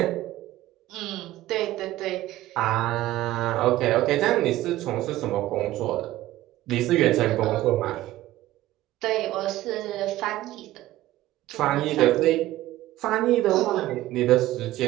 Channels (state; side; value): quieter; left; 15.6 dB